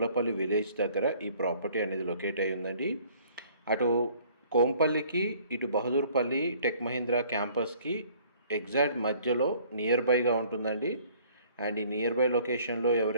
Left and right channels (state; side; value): inverted; both; correlation -0.56